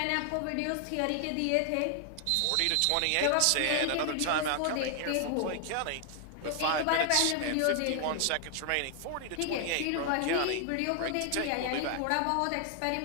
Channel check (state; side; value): different; both; correlation 0.00